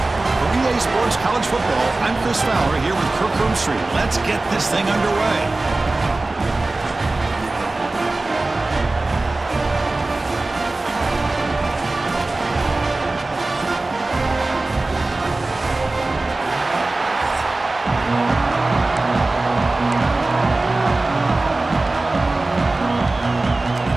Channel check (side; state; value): left; quieter; 3.1 dB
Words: For EA Sports College Football, I'm Chris Fowler here with Kirk Street. Let's get this thing underway.